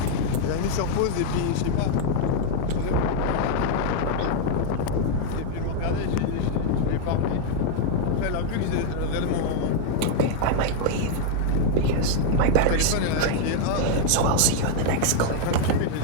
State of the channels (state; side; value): different; both; correlation 0.00